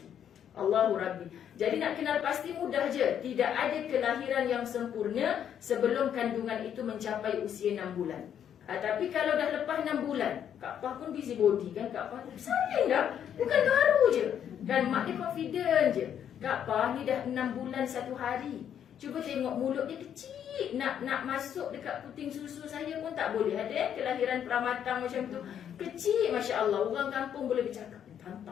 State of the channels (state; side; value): quieter; right; 9.2 dB